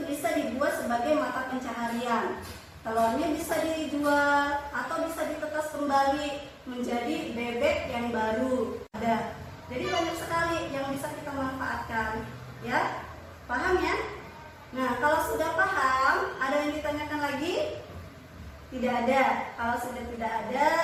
bisa dibuat sebagai mata pencaharian. Telurnya bisa dijual atau bisa ditetas kembali menjadi bebek yang baru. Ada. Jadi banyak sekali yang bisa kita manfaatkan. Ya, paham ya? Nah, kalau sudah paham, ada yang ditanyakan lagi? Tidak ada. Kalau sudah tidak ada,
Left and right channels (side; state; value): both; identical; correlation 1.00